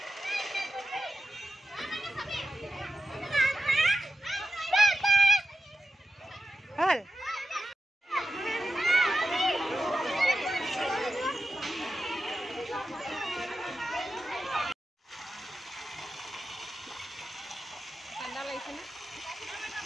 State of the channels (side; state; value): both; normal; correlation 0.90